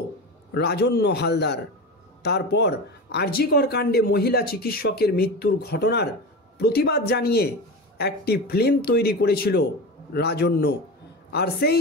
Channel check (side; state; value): both; normal; correlation 0.26